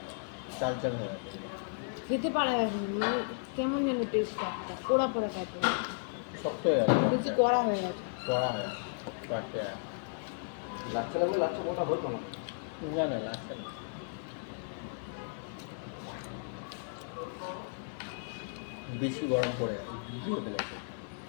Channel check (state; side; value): silent; right; digital silence